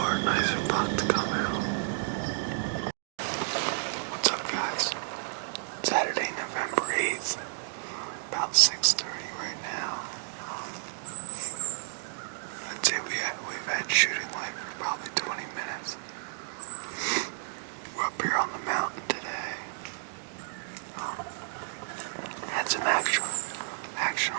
or a nicer buck to come out. What's up, guys? Saturday, November 8th. About 6:30 right now. I'd say we've had shooting light for probably 20 minutes. We're up here on the mountain today. Had some action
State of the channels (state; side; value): silent; left; digital silence